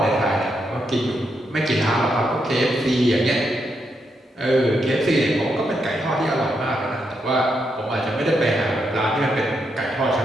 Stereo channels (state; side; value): normal; both; correlation 0.81